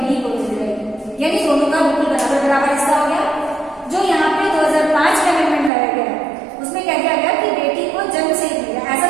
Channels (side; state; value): left; drops out; at 5.7 s